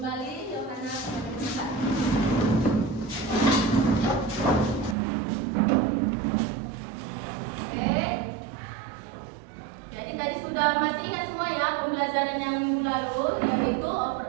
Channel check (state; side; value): drops out; left; at 5.0 s